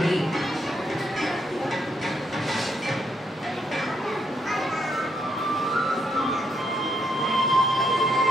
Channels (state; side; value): normal; both; correlation 0.76